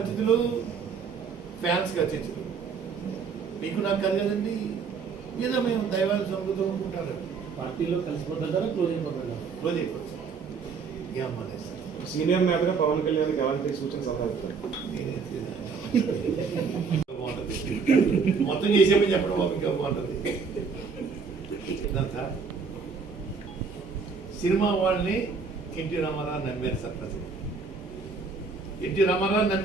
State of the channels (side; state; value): left; quieter; 5.3 dB